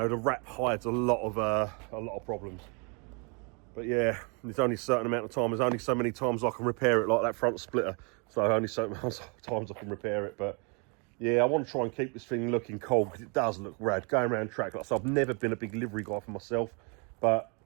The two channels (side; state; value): left; quieter; 34.1 dB